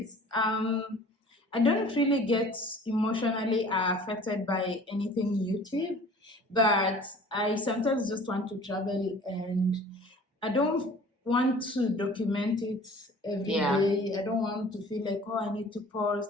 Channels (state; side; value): normal; both; correlation 0.47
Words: I don't really get emotionally affected by anything YouTube, but I sometimes just want to travel, and I don't want to document it every day. I don't want to feel like, I need to